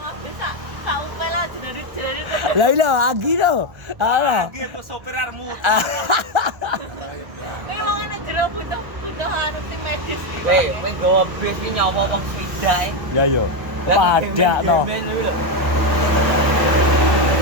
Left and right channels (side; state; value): left; late; 1.4 ms